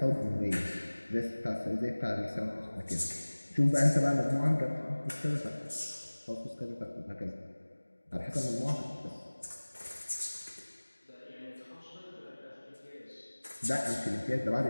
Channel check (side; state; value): both; inverted; correlation -1.00